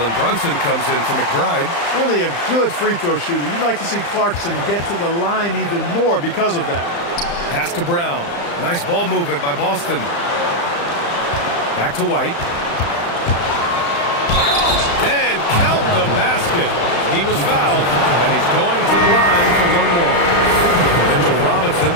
Brunson comes in for McBride. Really a good free throw shooter. You'd like to see Clarkson get to the line even more because of that. Pass to Brown. Nice ball movement by Boston. Back to White. And count the basket. He was fouled, and he's going to the line for one more. Mitchell Robinson,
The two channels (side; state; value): right; late; 35 ms